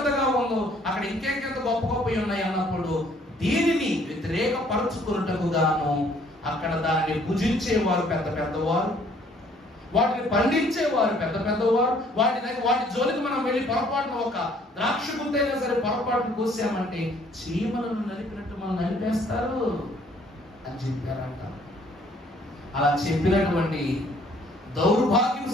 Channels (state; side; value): normal; both; correlation 0.61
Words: ఉందో, అక్కడ ఇంకెంత గొప్ప ఉన్నాయి అన్నప్పుడు దీనిని వ్యతిరేకపరచుకున్నట్టుకు గాను అక్కడ దాన్ని భుజించేవారు పెద్దవారు, వాటిని పండించేవారు పెద్దవారు. వాటి జోలికి మనం వెళ్ళి పొరపాటున ఒక ద్రాక్ష గుత్తైనా సరే పొరపాటును కోసామంటే చీమలను నలిపినట్టు మనం నలిపేస్తారు అని చెప్పారంట. అలా చెప్పినటువంటి దౌర్భాగ్య